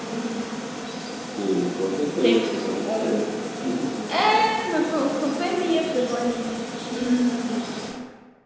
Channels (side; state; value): both; identical; correlation 1.00